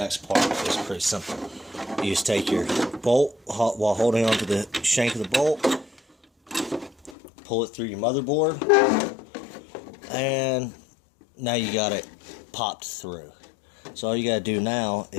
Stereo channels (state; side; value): drops out; right; at 7.2 s